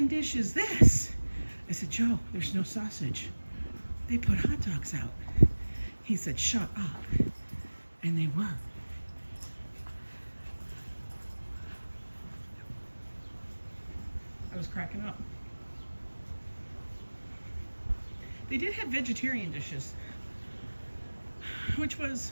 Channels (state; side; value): inverted; both; correlation -1.00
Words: dish is this? I said, Joe, there's no sausage. They put hot dogs out. He said, shut up. And they were. I was cracking up. They did have vegetarian dishes, which